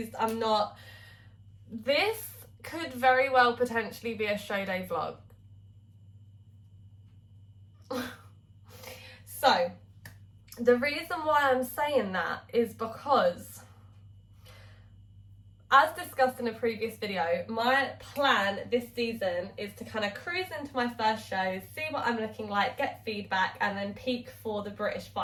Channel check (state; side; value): identical; both; correlation 1.00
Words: I'm not. This could very well potentially be a show day vlog. So, the reason why I'm saying that is because, as discussed in a previous video, my plan this season is to kind of cruise into my first shows, see what I'm looking like, get feedback, and then peak for the British